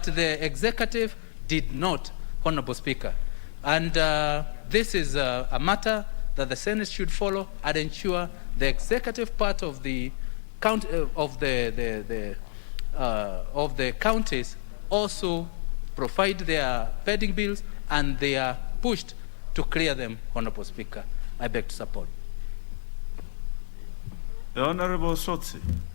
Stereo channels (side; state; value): right; silent; 59 dB below the other